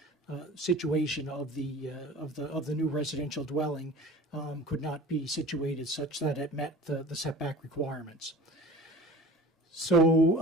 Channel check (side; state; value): both; normal; correlation 0.40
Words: situation of the new residential dwelling could not be situated such that it met the setback requirements.